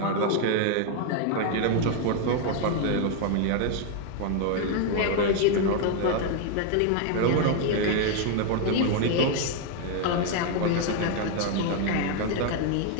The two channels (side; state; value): both; different; correlation 0.01